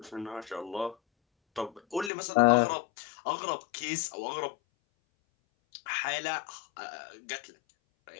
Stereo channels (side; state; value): right; drops out; at 2.1 s